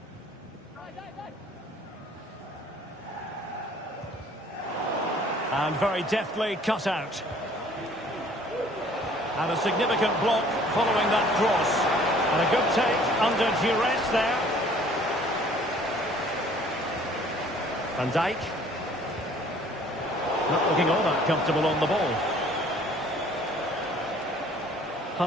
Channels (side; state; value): both; normal; correlation 0.55